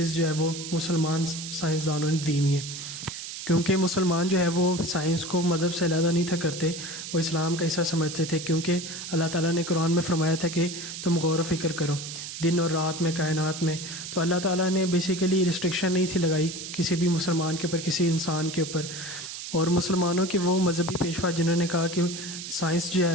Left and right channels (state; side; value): noise; right; hiss, 9 dB below the sound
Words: جو ہے وہ مسلمان سائنسدانوں نے دی ہوئی ہیں، کیونکہ مسلمان جو ہے وہ سائنس کو مذہب سے علیحدہ نہیں تھا کرتے، وہ اسلام کا حصہ سمجھتے تھے، کیونکہ اللہ تعالیٰ نے قرآن میں فرمایا تھا کہ تم غور و فکر کرو دن اور رات میں کائنات میں، تو اللہ تعالیٰ نے بیسیکلی ریسٹرکشن نہیں تھی لگائی کسی بھی مسلمان کے اوپر، کسی انسان کے اوپر۔ اور مسلمانوں کے وہ مذہبی پیشوا جنہوں نے کہا کہ سائنس جو